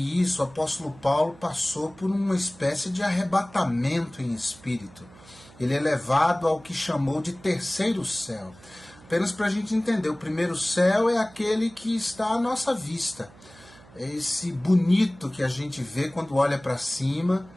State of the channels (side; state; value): right; noise; hum, 23 dB below the sound